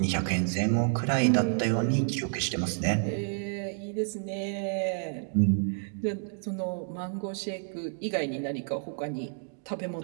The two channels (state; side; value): silent; left; digital silence